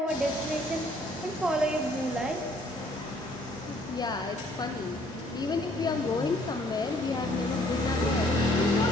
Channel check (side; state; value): both; normal; correlation 0.62